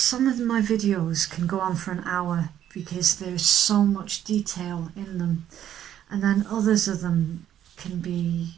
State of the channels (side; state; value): left; quieter; 10.8 dB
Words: of my videos can go on for an hour because there's so much detail in them, and then others of them can